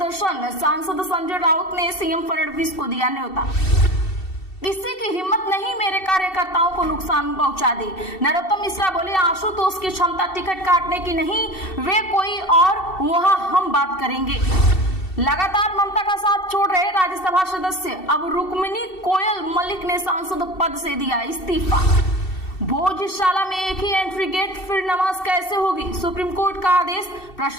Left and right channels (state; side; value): late; right; 2.7 ms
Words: सांसद संजय राउत ने सीएम फडणवीस को दिया न्योता। किसी की हिम्मत नहीं मेरे कार्यकर्ताओं को नुकसान पहुंचा दे, नरोत्तम मिश्रा बोले आशुतोष की क्षमता टिकट काटने की नहीं, वे कोई और, वहां हम बात करेंगे। लगातार ममता का साथ छोड़ रहे राज्यसभा सदस्य, अब रुक्मिणी कोयल मलिक ने सांसद पद से दिया इस्तीफा। भोजशाला में एक ही एंट्री गेट, फिर नमाज कैसे होगी, सुप्रीम कोर्ट का आदेश,